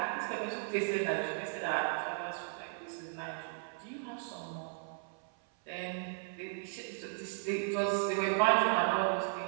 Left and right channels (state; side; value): silent; left; 54 dB below the other